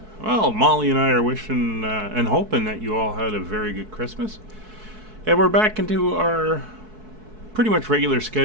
Well, Molly and I are wishing and hoping that you all had a very good Christmas. And we're back into our pretty much regular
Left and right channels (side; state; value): left; late; 4.6 ms